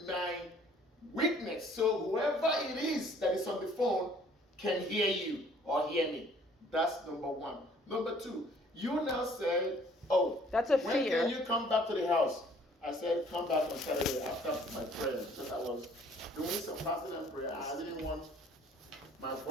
my witness so whoever it is that is on the phone can hear you or hear me. That's number one. Number two, you now say, oh, that's a when fear. can you come back to the house? I said, come back on Saturday after my prayer because I was doing some fasting and prayer. I didn't want my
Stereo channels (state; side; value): normal; both; correlation 0.58